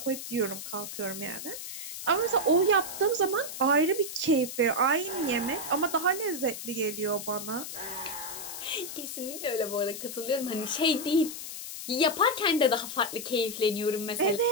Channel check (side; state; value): left; noise; hiss, 8 dB below the sound